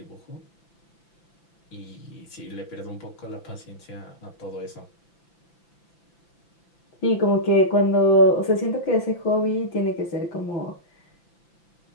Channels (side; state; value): right; late; 5.9 ms